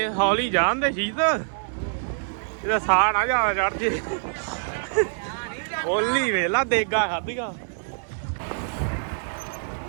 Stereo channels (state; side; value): silent; left; 62 dB below the other